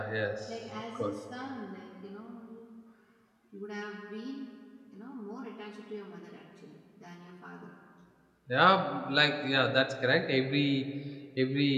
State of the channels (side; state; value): both; identical; correlation 1.00